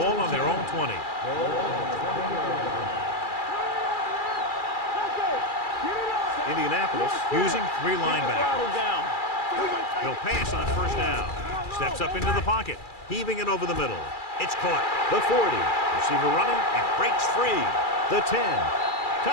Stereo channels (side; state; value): right; late; 2.3 ms